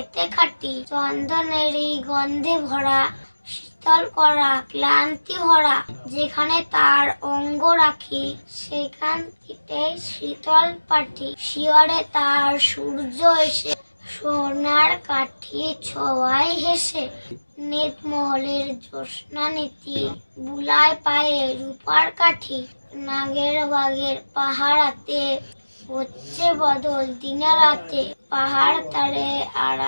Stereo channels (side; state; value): both; inverted; correlation -1.00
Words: খাঁটি। চন্দনেরই গন্ধে ভরা, শীতল করা ক্লান্তি ভরা। যেখানে তার অঙ্গ রাখি, সেখান থেকে শীতল পাটি। শিয়রে তার সূর্য এসে, সোনার কাঠি ছোঁয়ায় হেসে। নিতমহলের জ্যোৎস্না নীতি, বুলায় পায়ে রূপার কাঠি। নাগের বাগের পাহাড়াতে, হচ্ছে বদল দিনে রাতে। পাহাড় তারে